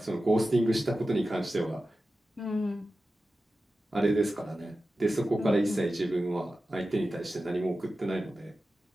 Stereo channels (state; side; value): normal; both; correlation 0.94